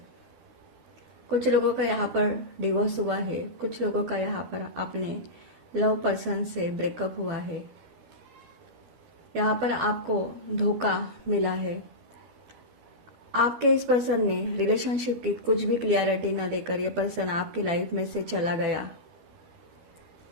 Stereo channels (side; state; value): left; late; 13 ms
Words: कुछ लोगों का यहाँ पर डिवोर्स हुआ है, कुछ लोगों का यहाँ पर अपने लव पर्सन से ब्रेकअप हुआ है। यहाँ पर आपको धोखा मिला है। आपके इस पर्सन ने रिलेशनशिप की कुछ भी क्लियरिटी न देकर यह पर्सन आपकी लाइफ में से चला गया।